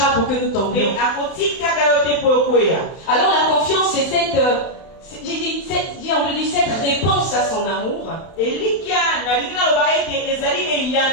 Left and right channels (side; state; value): right; late; 31 ms